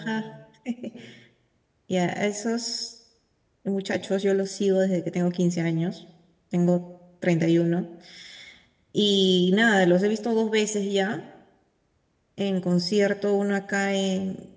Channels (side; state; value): both; identical; correlation 1.00